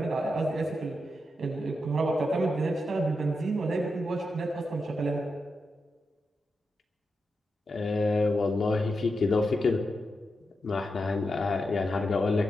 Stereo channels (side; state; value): both; normal; correlation 0.87